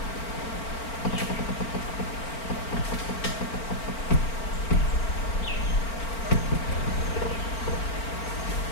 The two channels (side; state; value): right; late; 4.4 ms